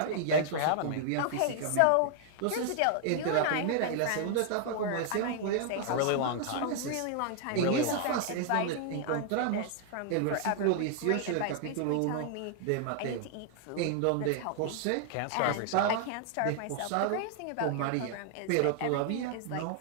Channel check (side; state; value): both; different; correlation 0.00